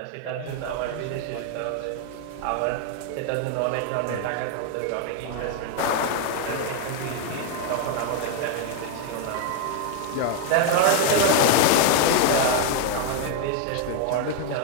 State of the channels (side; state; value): both; different; correlation 0.00